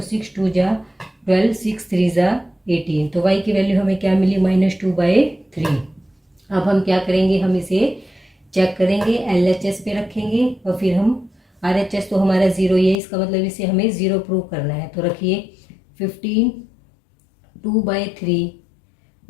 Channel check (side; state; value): right; drops out; at 13.0 s